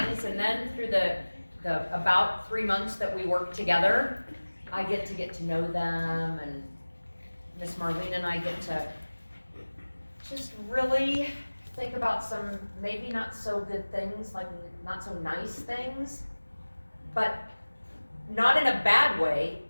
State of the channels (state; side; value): inverted; both; correlation -1.00